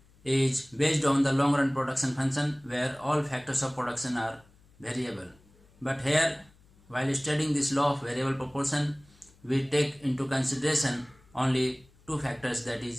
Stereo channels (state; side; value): noise; left; hum, 29 dB below the sound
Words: is based on the long run production function where all factors of production are variable. But here, while studying this law of variable proportion, we take into consideration only two factors, that